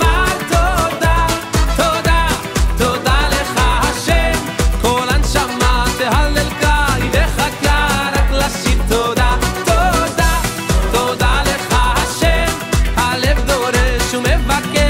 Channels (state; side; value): identical; both; correlation 1.00